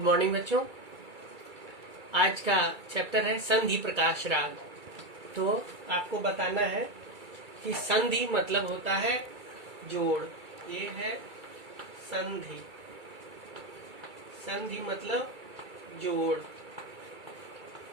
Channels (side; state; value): left; late; 2.3 ms